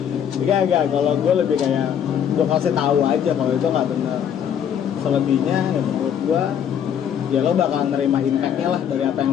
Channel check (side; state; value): right; quieter; 8.8 dB